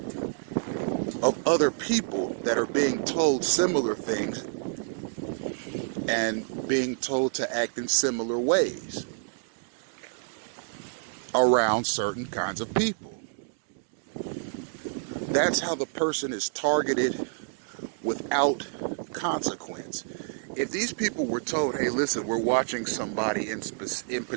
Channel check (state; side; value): silent; left; digital silence